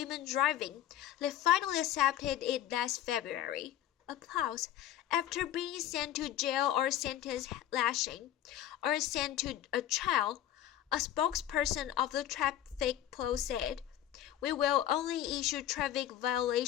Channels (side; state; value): right; quieter; 11.8 dB